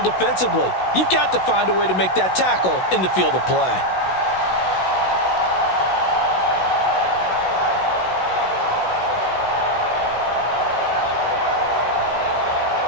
defensively, you've got to find a way to make that tackle in the field of play.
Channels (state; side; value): late; right; 16 ms